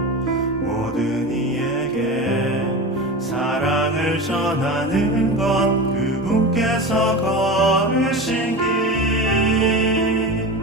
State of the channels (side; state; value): both; normal; correlation 0.27